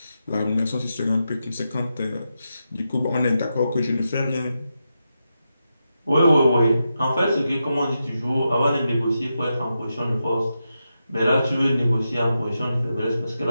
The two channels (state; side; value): inverted; both; correlation -0.87